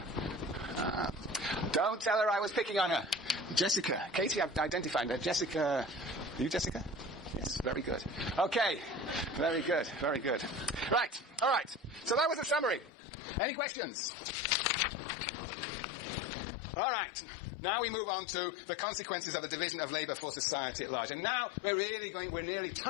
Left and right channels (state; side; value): drops out; right; at 12.9 s